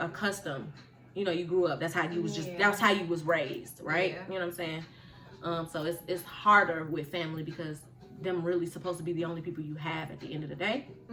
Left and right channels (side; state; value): both; identical; correlation 1.00